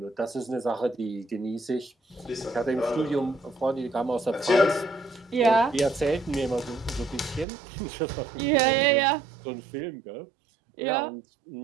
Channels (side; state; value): left; drops out; at 7.5 s